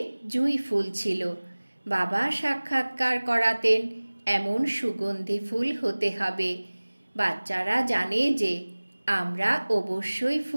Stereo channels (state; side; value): inverted; both; correlation -1.00